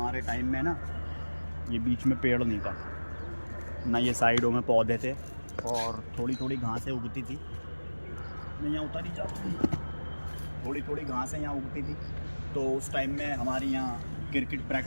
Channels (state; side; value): inverted; both; correlation -1.00